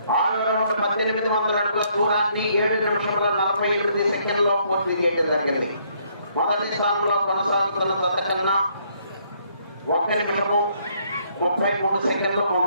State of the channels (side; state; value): both; inverted; correlation -0.68